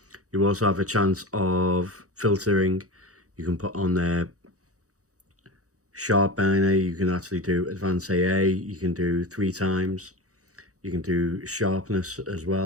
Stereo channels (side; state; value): left; late; 0.66 ms